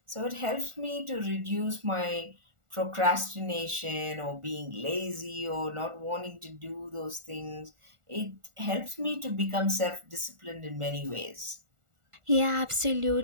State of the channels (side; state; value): left; late; 1.4 ms